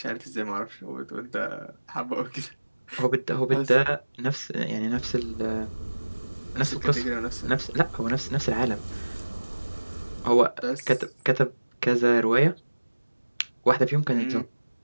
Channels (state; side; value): inverted; both; correlation -1.00